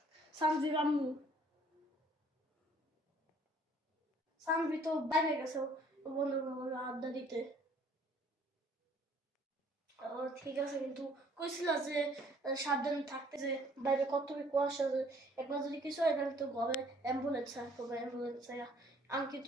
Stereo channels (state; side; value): normal; both; correlation 0.59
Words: সানজির আম্মু, সানভি তো বাইরে গেছে বন্ধুর আড্ডা দিতে। ঠিক আছে, কিন্তু কইছিল যে সাবধানে থাকতে, যে বাইরে কত কুয়াশা, যে একবার যদি কিছু হয় তাহলে তো ঘরে অ্যাম্বুলেন্স আসবে, অ্যাম্বুলেন্স। আমি